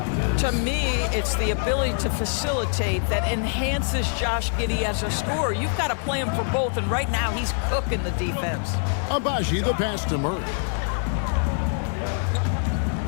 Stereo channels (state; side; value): silent; right; 57 dB below the other